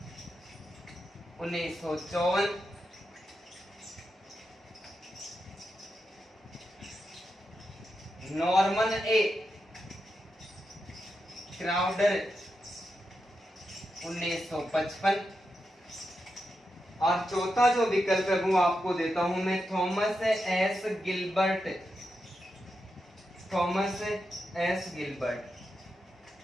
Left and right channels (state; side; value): normal; both; correlation 0.87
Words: 1954, Norman A Crowder 1955, और चौथा जो विकल्प है वो आपको देता हूं मैं, Thomas S Gilbert, Thomas S Gilbert,